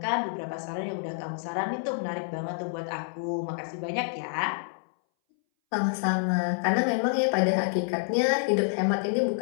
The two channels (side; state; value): right; silent; 59 dB below the other